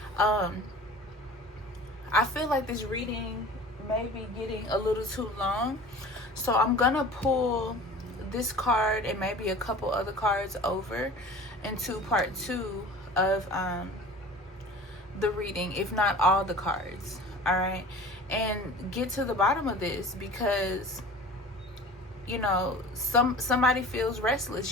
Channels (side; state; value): both; normal; correlation 0.41